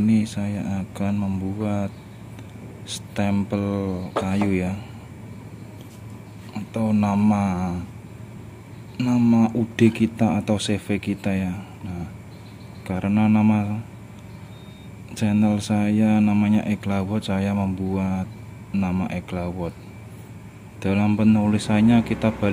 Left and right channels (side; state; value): both; identical; correlation 1.00